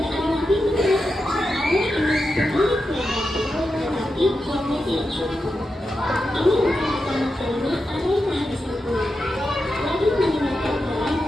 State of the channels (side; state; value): both; normal; correlation 0.89